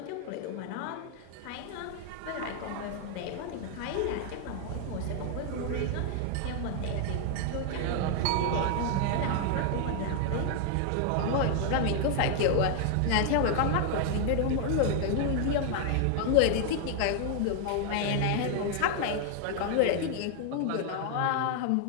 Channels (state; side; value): different; both; correlation 0.00